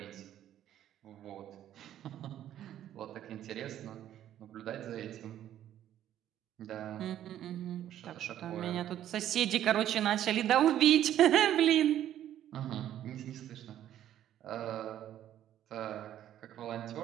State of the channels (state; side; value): quieter; left; 11.5 dB